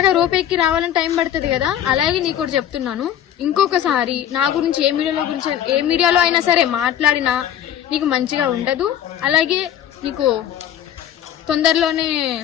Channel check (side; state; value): right; quieter; 10.5 dB